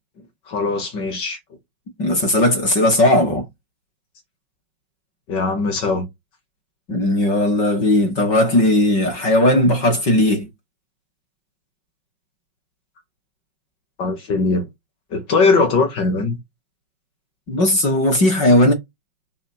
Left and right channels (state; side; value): late; right; 5.4 ms